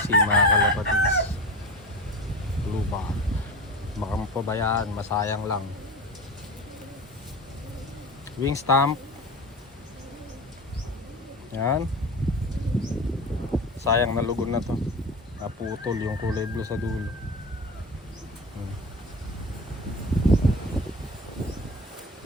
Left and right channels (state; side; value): normal; both; correlation 0.30